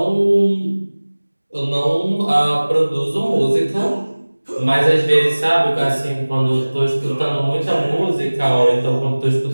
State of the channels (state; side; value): inverted; both; correlation -1.00